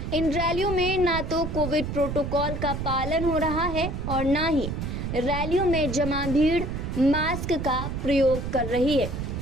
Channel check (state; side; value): noise; right; rumble, 4 dB below the sound